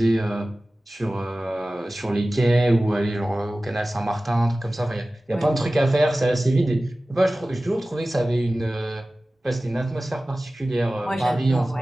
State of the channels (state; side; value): normal; both; correlation 0.97